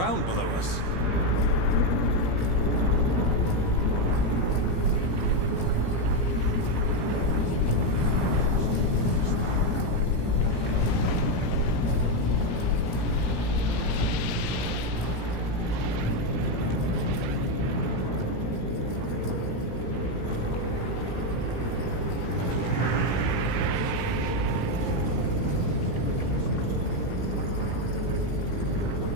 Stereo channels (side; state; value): right; late; 17 ms